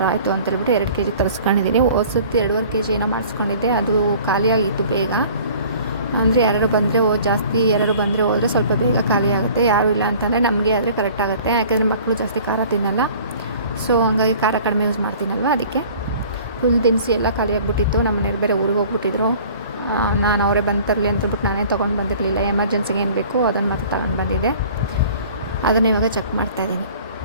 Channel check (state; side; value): inverted; both; correlation -0.48